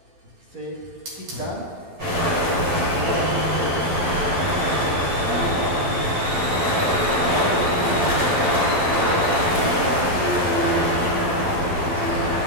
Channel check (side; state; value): left; late; 12 ms